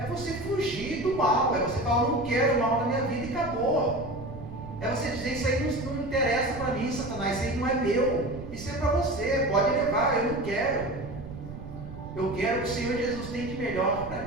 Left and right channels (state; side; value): noise; right; rumble, 12 dB below the sound